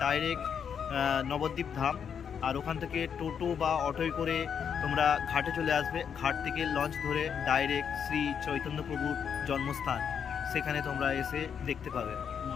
ডাইরেক্ট নবদ্বীপ ধাম, আর ওখান থেকে টোটো বা অটোয় করে তোমরা ঘাটে চলে আসবে। ঘাট থেকে লঞ্চ ধরে ডাইরেক্ট শ্রী চৈতন্য প্রভুর জন্মস্থান, সেখানে তোমরা এসে দেখতে পাবে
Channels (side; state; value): right; quieter; 7.5 dB